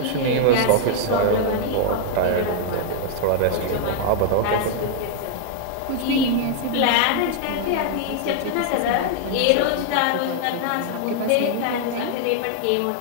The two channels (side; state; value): both; different; correlation 0.00